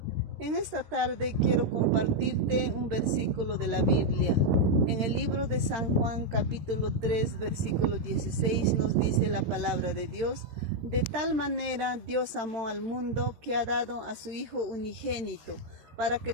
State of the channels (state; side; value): late; left; 13 ms